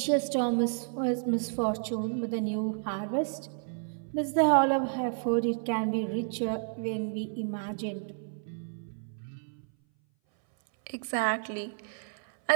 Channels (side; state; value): left; silent; 57 dB below the other